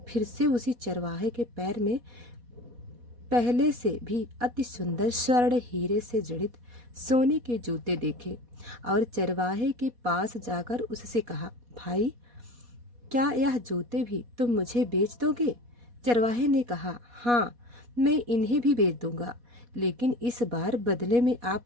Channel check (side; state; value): left; late; 4.2 ms